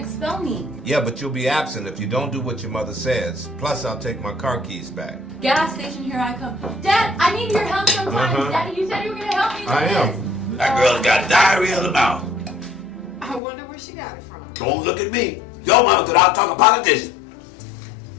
me. Yeah, but you'll be absent if you don't do what your mother says. Plus, I'll take my car keys back. Gas station, here I come. Dad, I need your help sometimes. Daddy, you said you were gonna help me with I am. this. That girl's got diarrhea of the mouth. I wonder where she got it from. Don't look at me. Your mama could out-talk a politician.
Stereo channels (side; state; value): right; drops out; at 13.4 s